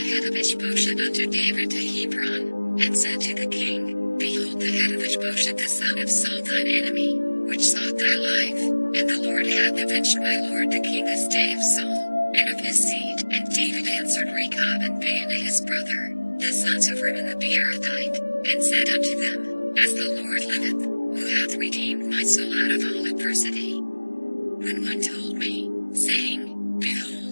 head of Ishbosheth unto David to Hebron, and said to the king, Behold the head of Ishbosheth the son of Saul thine enemy, which sought thy life, and the Lord hath avenged my lord the king this day of Saul, and of his seed. And David answered Rechab and Baanah his brother, the sons of Rimmon the Beerothite, and said unto them, As the Lord liveth, who hath redeemed my soul out of all adversity. When one told me, saying,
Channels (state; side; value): inverted; both; correlation -1.00